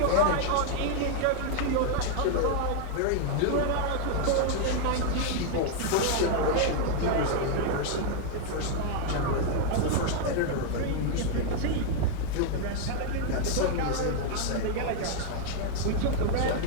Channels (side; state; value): both; different; correlation 0.00